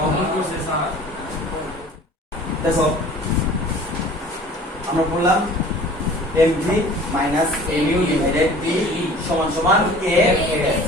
mv minus mu divided t সমান সমান kf।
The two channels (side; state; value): both; normal; correlation 0.46